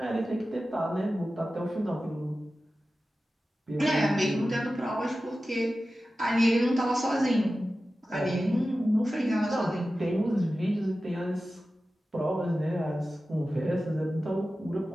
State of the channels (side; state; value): both; normal; correlation 0.94